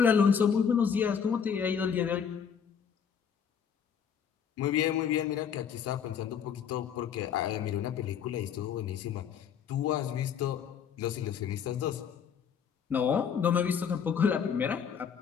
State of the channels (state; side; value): quieter; right; 7.4 dB